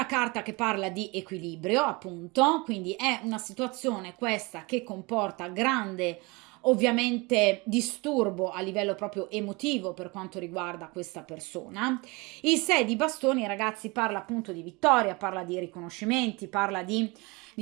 carta che parla di equilibrio, appunto, quindi è una situazione questa che comporta grande ovviamente disturbo a livello proprio emotivo per quanto riguarda questa persona. Il 6 di bastoni, ragazzi, parla appunto di vittoria, parla di riconoscimenti, parla di,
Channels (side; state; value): left; quieter; 26.0 dB